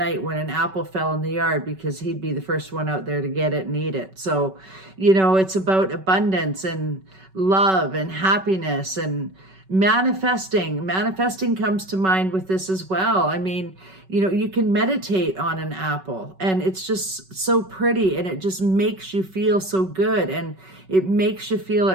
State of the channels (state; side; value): late; left; 5.3 ms